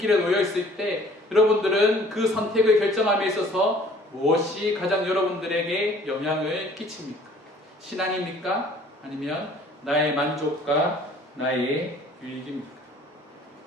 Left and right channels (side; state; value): both; normal; correlation 0.54